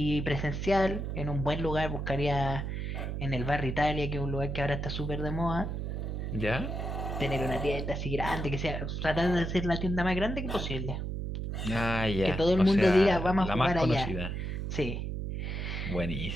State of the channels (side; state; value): right; noise; hum, 3 dB below the sound